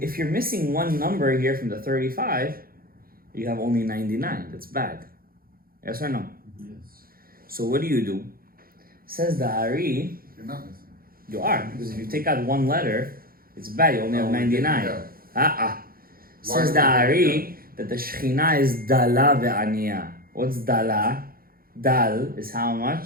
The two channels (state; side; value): late; left; 0.42 ms